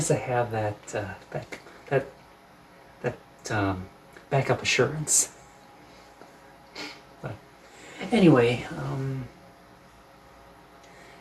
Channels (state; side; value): identical; both; correlation 1.00